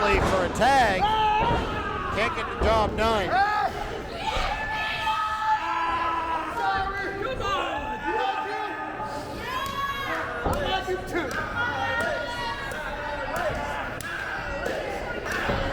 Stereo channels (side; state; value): both; identical; correlation 1.00